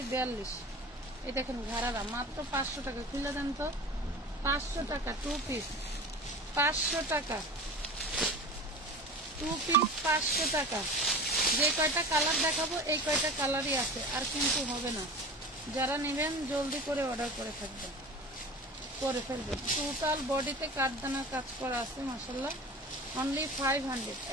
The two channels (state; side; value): normal; both; correlation 0.35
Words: 42। এই দেখেন ঘাড়ারা মাত্র 500 টাকা। খুলে দেন তো, 500 টাকা 2 পিস, 500 টাকা 2 পিস, 500 টাকা। যে কয়টা কালার দেখাবো এই কয়টা কালারই আছে, আর কিন্তু হবে না। যারা নেবেন জলদি করে অর্ডার করে ফেলবেন। টোটাল বডিতে কাঠদানা কাজ করা আছে মাশাআল্লাহ। অনলি 500,